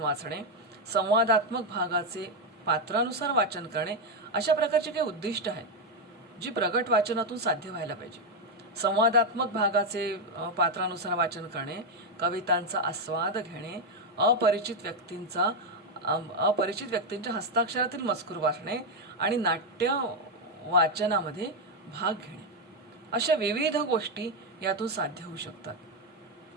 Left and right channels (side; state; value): both; normal; correlation 0.05